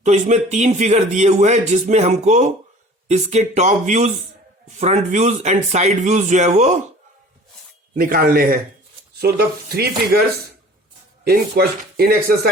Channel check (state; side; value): normal; both; correlation 0.46